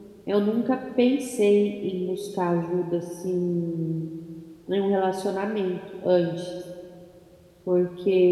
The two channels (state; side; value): identical; both; correlation 1.00